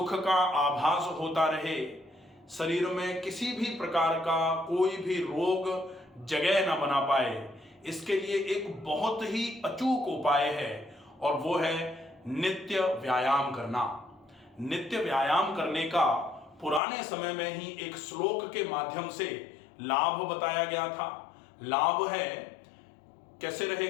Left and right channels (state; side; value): drops out; right; at 16.8 s